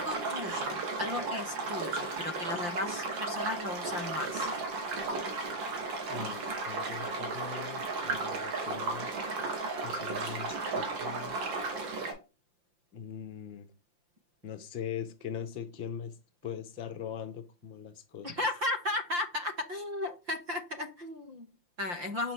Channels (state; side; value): late; left; 5.8 ms